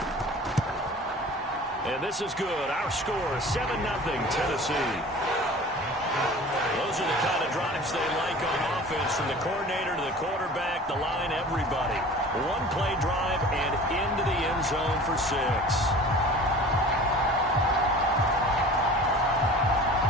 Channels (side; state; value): both; normal; correlation 0.42